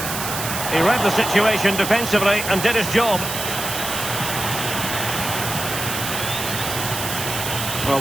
He read the situation defensively and did his job.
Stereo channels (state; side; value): noise; right; hiss, 5 dB below the sound